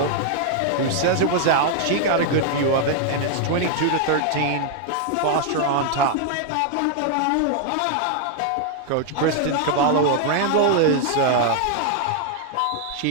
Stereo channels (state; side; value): different; both; correlation 0.00